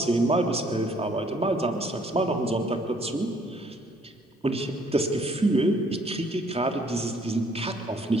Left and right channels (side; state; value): both; normal; correlation 0.62